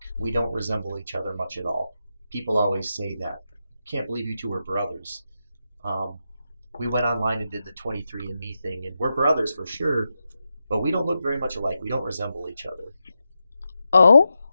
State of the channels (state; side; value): inverted; both; correlation -0.88